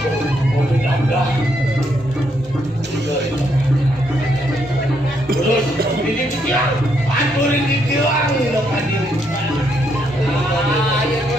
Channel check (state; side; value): normal; both; correlation 0.75